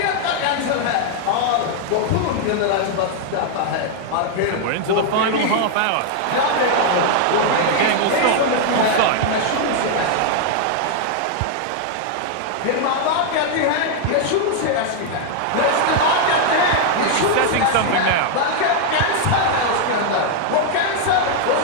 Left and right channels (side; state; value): both; different; correlation 0.00